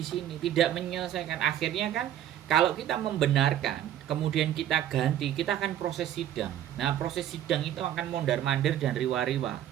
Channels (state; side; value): quieter; left; 11.4 dB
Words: sini tidak menyelesaikan. Akhirnya kan kalau kita membenarkan, kemudian kita ganti, kita akan proses sidang. Nah, proses sidang itu akan mondar-mandir dan riwa-riwa.